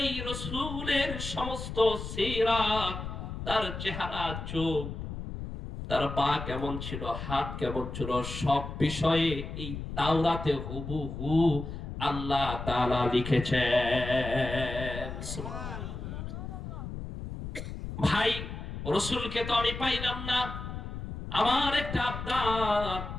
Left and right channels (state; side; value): noise; left; rumble, 7 dB below the sound